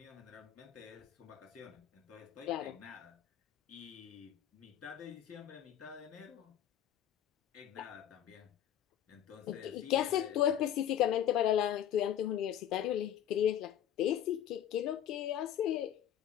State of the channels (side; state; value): right; quieter; 10.6 dB